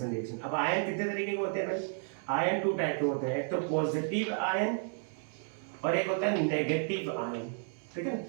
रिएक्शन। अब आयन कितने तरीके के होते हैं भाई? आयन 2 टाइप के होते हैं, एक तो पॉजिटिव आयन और एक होता है नेगेटिव आयन, ठीक है।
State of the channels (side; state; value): left; silent; 56 dB below the other